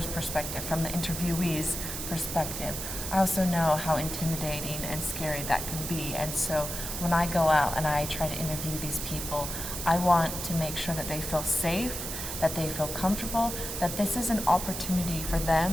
perspective, from the interviewee's perspective, I also know how intimidating and scary that can be. And so when I go out and I try to interview these people, I want to make sure that they feel safe, that they feel comfortable, that this is an opportunity for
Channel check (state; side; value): noise; right; hiss, 5 dB below the sound